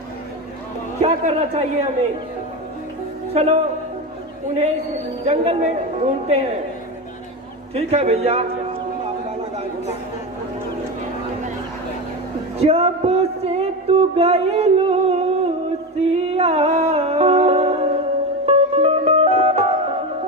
क्या करना चाहिए हमें? चलो उन्हें इस जंगल में ढूंढते हैं। ठीक है भैया। जब से तू गई लूसिया,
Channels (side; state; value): both; normal; correlation 0.19